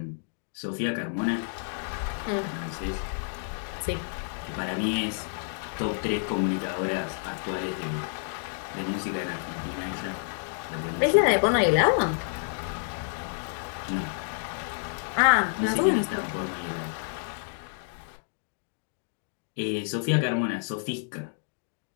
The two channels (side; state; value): right; silent; digital silence